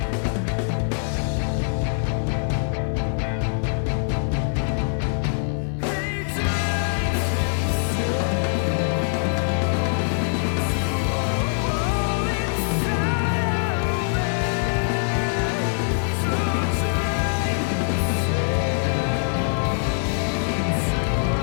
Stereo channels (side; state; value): right; silent; digital silence